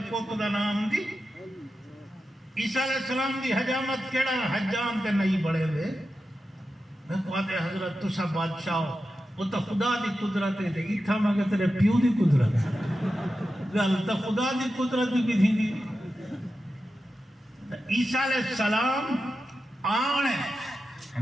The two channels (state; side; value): normal; both; correlation 0.91